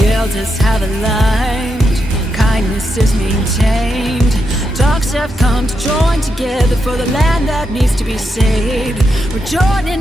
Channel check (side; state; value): both; normal; correlation 0.84